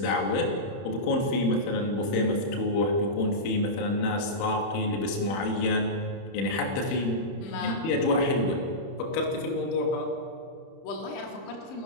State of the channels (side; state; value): right; late; 30 ms